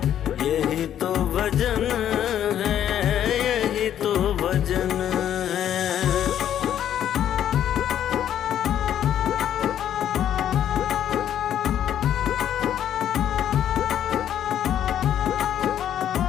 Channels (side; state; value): right; quieter; 10.4 dB